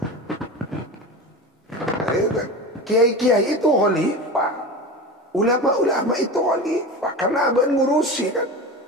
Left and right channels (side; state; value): both; normal; correlation 0.28